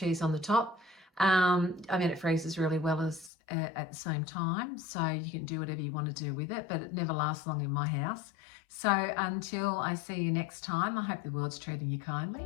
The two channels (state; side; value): drops out; right; at 3.3 s